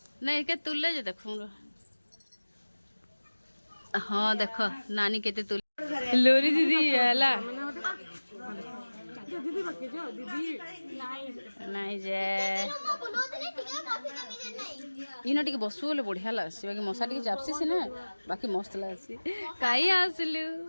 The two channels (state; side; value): inverted; both; correlation -1.00